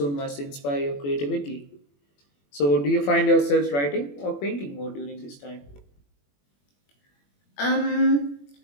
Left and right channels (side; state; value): right; late; 21 ms